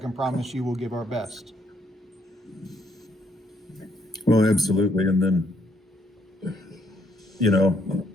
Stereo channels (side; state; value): both; normal; correlation 0.70